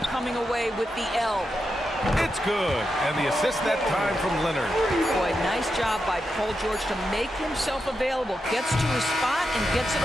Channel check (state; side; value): normal; both; correlation 0.87